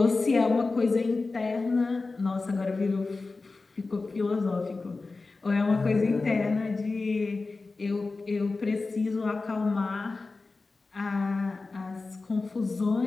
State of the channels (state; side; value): quieter; right; 3.7 dB